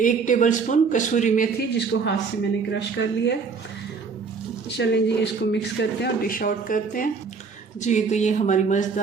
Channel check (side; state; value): left; quieter; 5.2 dB